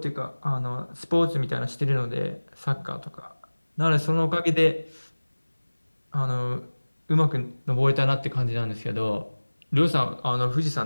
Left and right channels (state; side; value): inverted; both; correlation -1.00